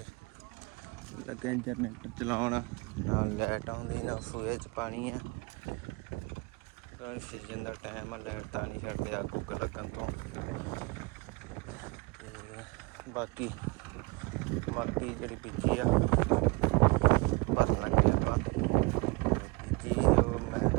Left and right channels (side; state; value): left; quieter; 27.6 dB